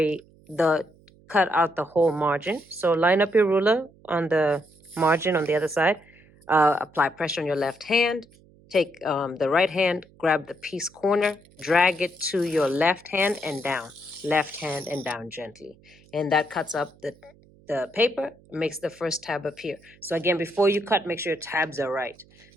cut out the whole margin. So line up your ruler on the margin on the other side, apply pressure on your left hand, take the right hand, grab the piece corner, drag it to your left hand and down, left hand and down gently. And that cuts up the paper, makes the first tab appear. So again, before you cut, make sure your tabs are right.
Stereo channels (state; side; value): noise; right; hum, 28 dB below the sound